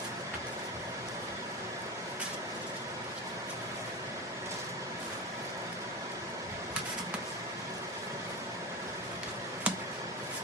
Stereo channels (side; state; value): both; normal; correlation 0.21